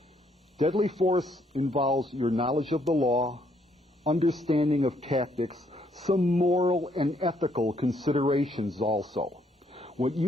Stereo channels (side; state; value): both; normal; correlation 0.70